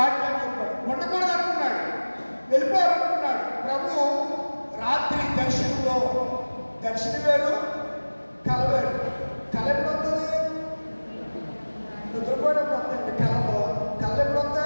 చెప్పాడు. ఉండకూడదు అనుకున్నాడు, వెళ్ళిపోవాలనుకున్నాడు. ప్రభు రాత్రి దర్శనంలో, దర్శనం వేరు కల వేరు. కళ ఎప్పుడు వస్తుంది? నిద్రపోయినప్పుడు వస్తాయండి కళలో. కళ ఎప్పుడు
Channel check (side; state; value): both; inverted; correlation -1.00